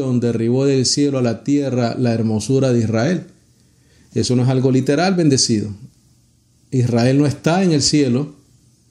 derribó del cielo a la tierra la hermosura de Israel. Eso no es algo literal, bendecido. Israel no está en el cielo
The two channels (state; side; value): identical; both; correlation 1.00